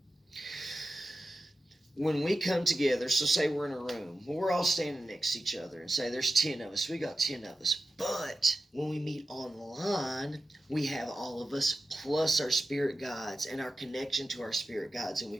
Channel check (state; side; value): normal; both; correlation 0.93